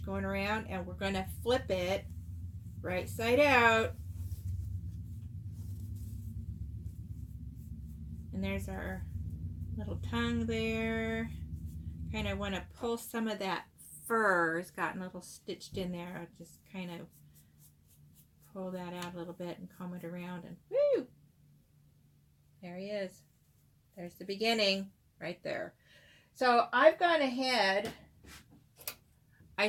going around, and we're going to flip it right side out. And there's our little tongue there. Kind of want to pull some of that fur. It's gotten a little stitched in there. I'll just kind of pull that out a little bit and comb it around, and woo! There he is. There's the beginning right there. So I've gone ahead, I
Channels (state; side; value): identical; both; correlation 1.00